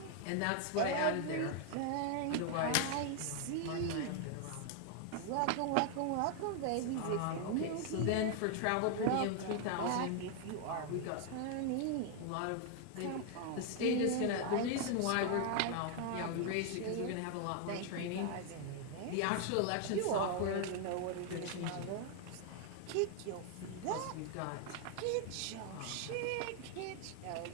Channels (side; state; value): both; different; correlation 0.00